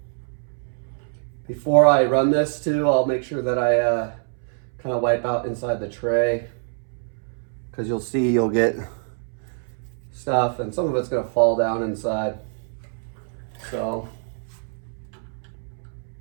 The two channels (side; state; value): left; silent; 62 dB below the other